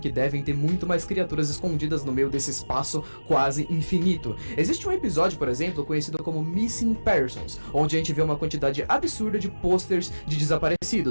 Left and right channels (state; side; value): inverted; both; correlation -1.00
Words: devem ter muito mais criaturas escondidas no meio desse espaço quase infinito. Existe um episódio, por exemplo, conhecido como Missing Persons, onde a gente vê uma quantidade absurda de posters de